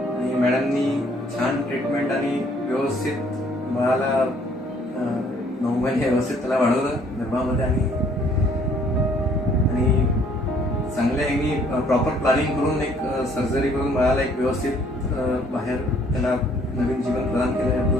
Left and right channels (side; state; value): both; normal; correlation 0.62